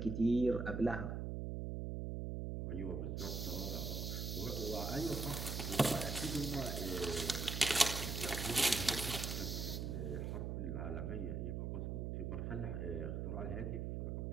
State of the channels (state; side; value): noise; right; hum, 2 dB below the sound